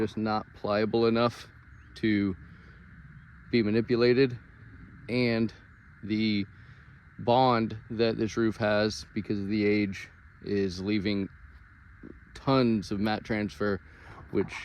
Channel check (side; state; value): both; identical; correlation 1.00